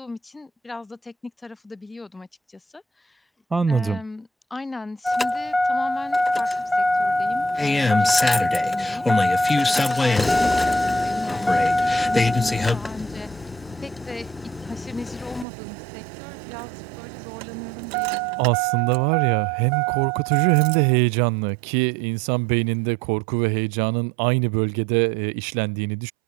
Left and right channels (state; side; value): drops out; left; at 15.5 s